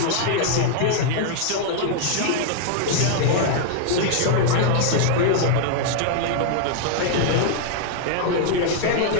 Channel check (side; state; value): both; different; correlation 0.00